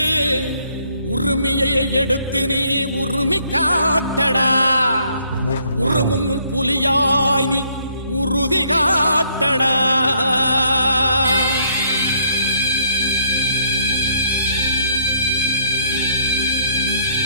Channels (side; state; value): both; inverted; correlation -0.68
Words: உரிமையை எடுத்து நீ உரிமை காட்டடா உருமும் புலியாய் நீ உறுதி காட்டடா